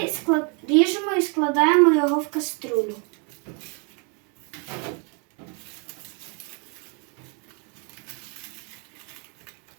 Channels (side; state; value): left; quieter; 35.3 dB